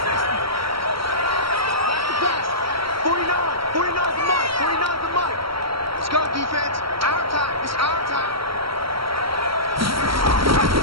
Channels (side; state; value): left; late; 0.75 ms